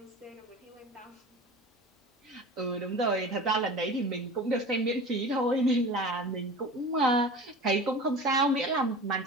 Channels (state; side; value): normal; both; correlation 0.35